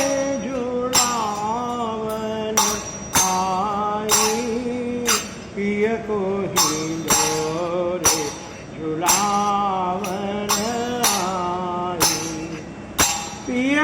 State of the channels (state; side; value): identical; both; correlation 1.00